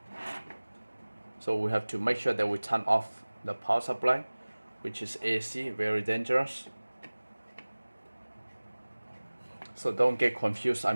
So we have to make sure that we turn off the power supply, which is AC, very dangerous. So don't get confused,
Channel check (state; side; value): inverted; both; correlation -1.00